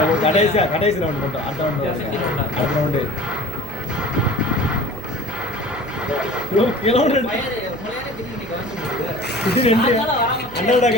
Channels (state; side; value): noise; right; hum, 16 dB below the sound